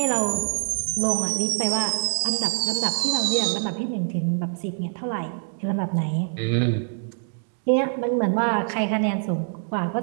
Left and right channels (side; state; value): left; silent; 62 dB below the other